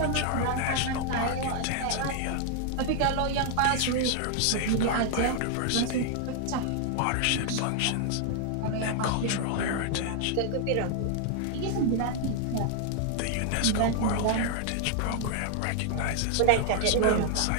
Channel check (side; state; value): both; different; correlation 0.00